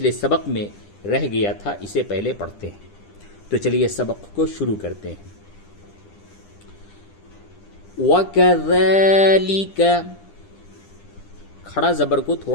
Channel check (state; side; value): late; right; 10 ms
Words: سبق میں رہ گیا تھا، اسے پہلے پڑھتے ہیں۔ تو چلیے سبق کو شروع کرتے ہیں۔ وَكَذَلِكَ، کھڑا زبر کو